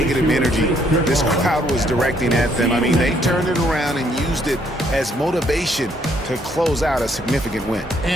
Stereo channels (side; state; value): both; normal; correlation 0.69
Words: energy this crowd was directing at them. I mean, they turned it around and used it as motivation to close out a significant win.